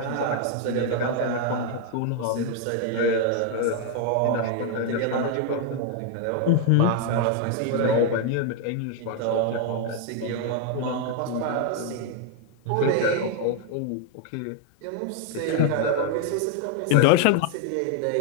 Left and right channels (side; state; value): both; different; correlation 0.01